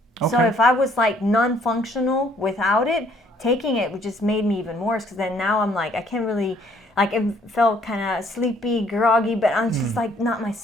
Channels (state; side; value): normal; both; correlation 0.63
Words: Okay. So if I was like non-functional without it, taking it just made me even worse because then now I'm like, I can't really, like it felt kind of sleepy, groggy, but I'm just like not